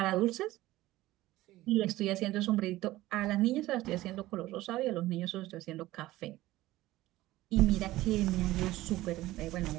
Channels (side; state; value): left; quieter; 16.9 dB